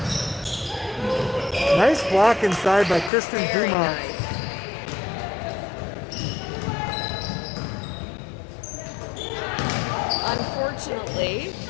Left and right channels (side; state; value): right; drops out; at 3.1 s